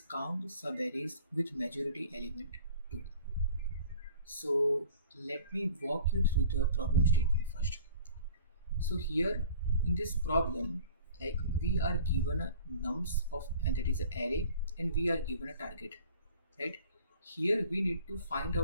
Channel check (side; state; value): both; inverted; correlation -0.48